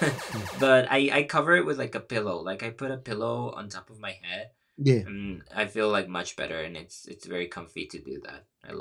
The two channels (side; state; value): both; identical; correlation 1.00